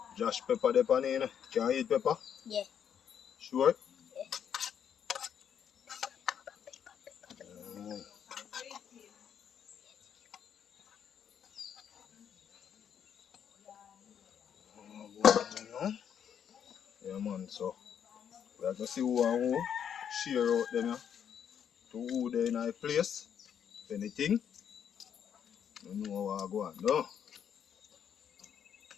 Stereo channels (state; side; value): quieter; right; 8.5 dB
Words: Josh pepper there, pan, you know. Can you eat pepper? Yeah. Sure? Yeah, man, so we have to see who and who share out them, yeah. to who they in a place. Anything. You know how I go on, no?